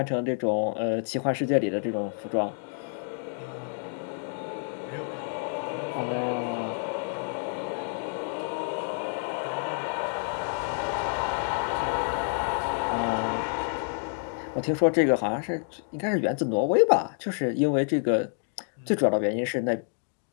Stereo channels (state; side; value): silent; right; 59 dB below the other